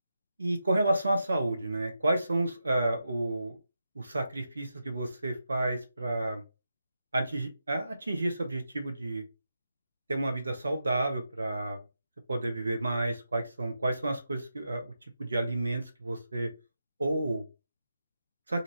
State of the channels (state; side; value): inverted; both; correlation -0.87